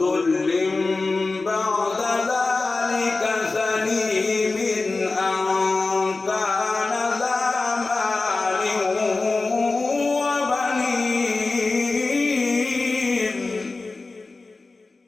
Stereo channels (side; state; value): right; quieter; 3.6 dB